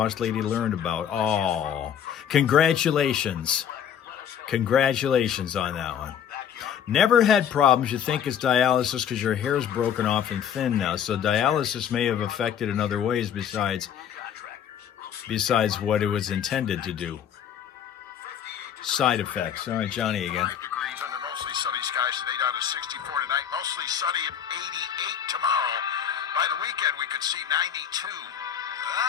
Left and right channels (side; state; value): right; quieter; 8.8 dB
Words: Lady learned about. Oh, congratulations. Congratulations on that one. Never had problems. You think it's dialysis because your hair is broken off and thin now. So dialysis may have affected in other ways besides what it was intended to do. Side effects. All right, Johnny again. 5 degrees under mostly sunny skies today, down to 64 tonight. Mostly sunny and 88 tomorrow. By the weekend, we could see